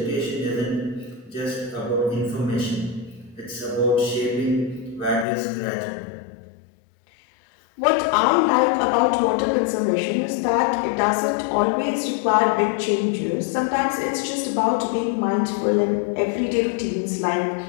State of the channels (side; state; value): right; drops out; at 5.2 s